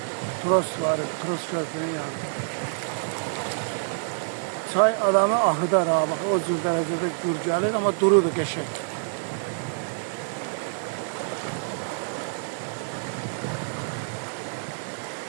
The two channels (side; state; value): left; silent; digital silence